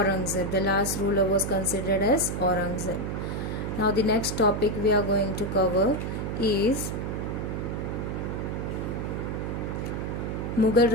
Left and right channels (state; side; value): noise; right; hum, 3 dB below the sound